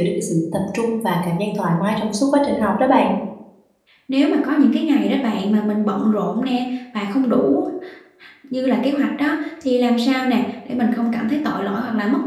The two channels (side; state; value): both; identical; correlation 1.00